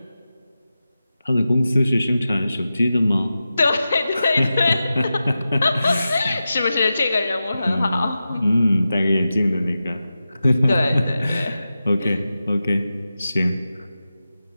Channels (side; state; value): both; inverted; correlation -0.92